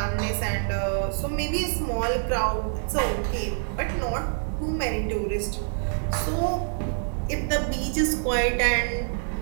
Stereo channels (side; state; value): left; silent; digital silence